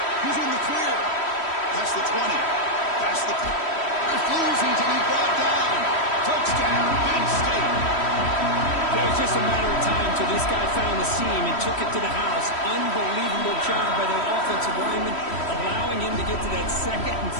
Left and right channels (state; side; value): late; right; 3.1 ms